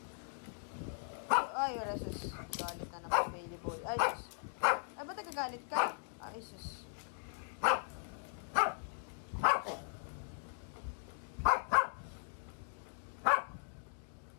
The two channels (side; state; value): right; silent; digital silence